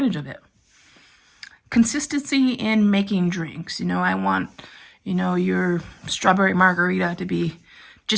of it. Consistency in making drinks. I want, your strawberry margarita to be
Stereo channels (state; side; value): identical; both; correlation 1.00